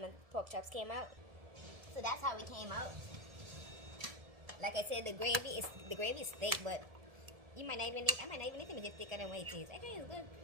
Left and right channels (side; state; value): left; late; 1.7 ms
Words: pork chops came out. So that's how it came out. Like I said, the gravy is thick, but I might not even need to make it thicker than what it is. I think it's good.